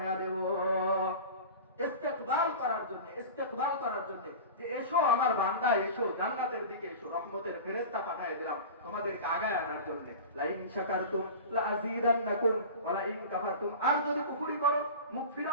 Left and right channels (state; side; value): inverted; both; correlation -0.33